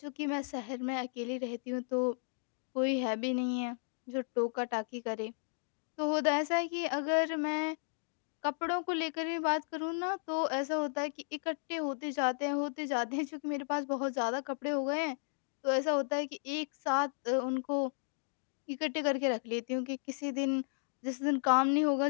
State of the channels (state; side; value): silent; right; digital silence